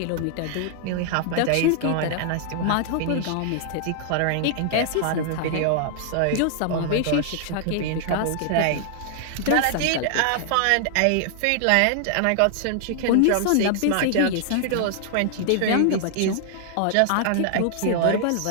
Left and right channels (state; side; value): different; both; correlation -0.01